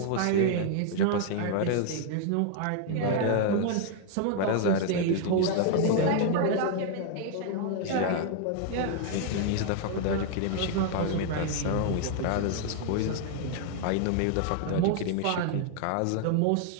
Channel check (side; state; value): both; different; correlation 0.00